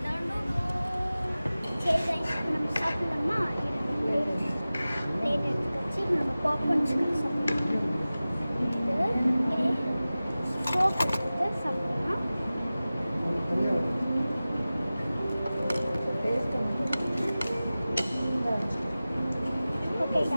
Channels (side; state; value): both; inverted; correlation -0.97